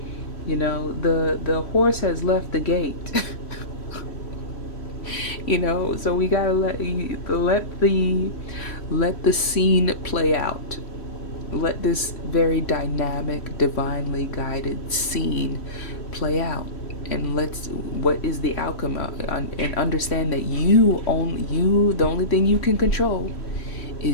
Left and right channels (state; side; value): late; right; 3.1 ms